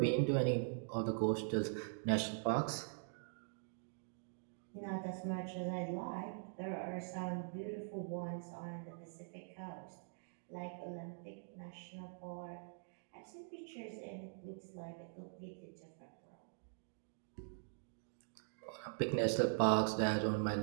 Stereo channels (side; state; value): left; silent; digital silence